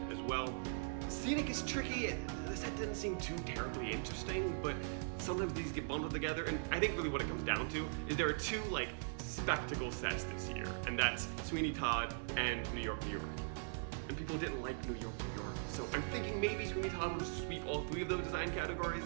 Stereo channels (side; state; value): left; silent; digital silence